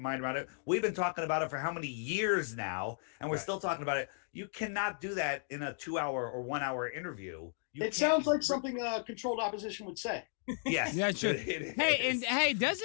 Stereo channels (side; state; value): right; silent; digital silence